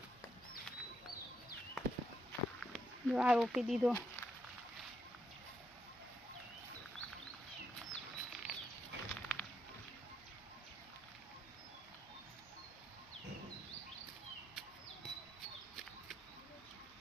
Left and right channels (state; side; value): normal; both; correlation 0.78